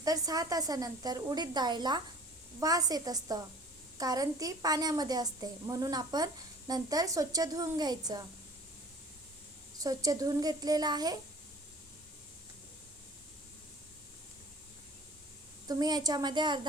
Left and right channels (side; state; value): both; normal; correlation 0.47